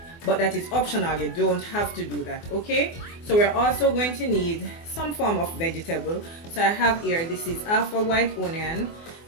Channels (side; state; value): right; late; 24 ms